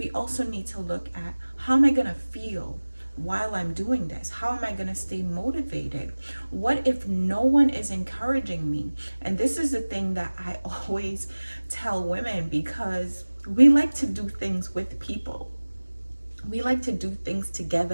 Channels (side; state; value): both; inverted; correlation -1.00